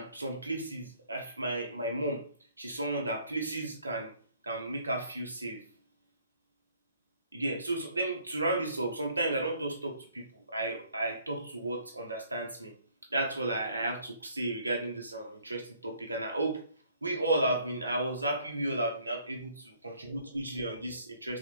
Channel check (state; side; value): inverted; both; correlation -0.62